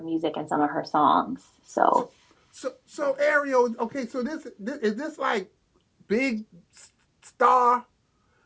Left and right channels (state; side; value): identical; both; correlation 1.00